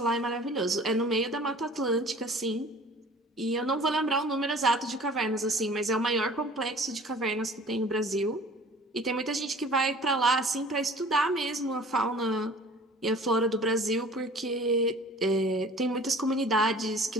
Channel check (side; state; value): both; normal; correlation 0.47